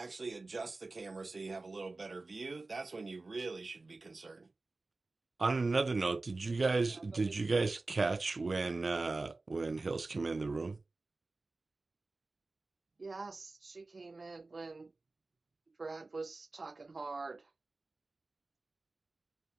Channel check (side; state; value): left; quieter; 3.4 dB